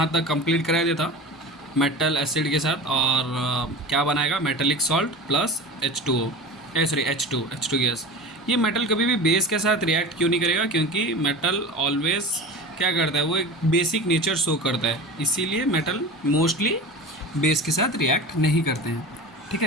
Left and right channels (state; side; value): normal; both; correlation 0.32